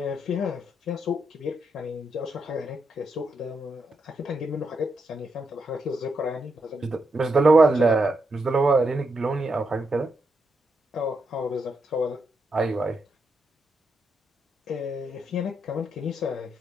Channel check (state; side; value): normal; both; correlation 0.82